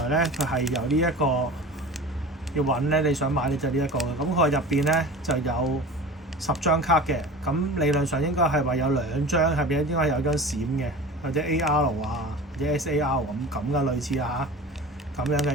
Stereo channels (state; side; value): normal; both; correlation 0.36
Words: 咧佢係由呢一個要揾咧，你想買咧就呢一個嘅。咁佢入邊咧就有10張卡嘅，咁理論上應該係話有2張入邊應該有張閃嘅，或者 AR 啊，或者 SAR 咁嘅類似啊嚇，咁樣